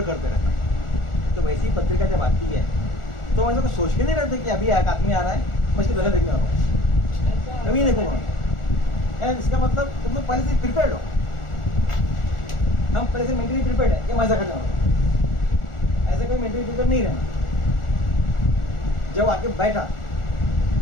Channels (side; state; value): right; late; 1.4 ms